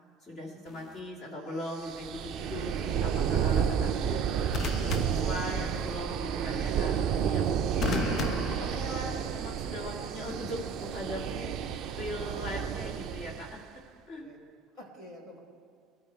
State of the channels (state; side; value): quieter; left; 5.0 dB